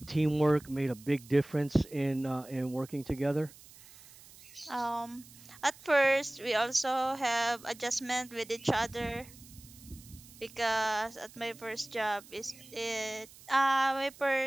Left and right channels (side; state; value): right; noise; hiss, 21 dB below the sound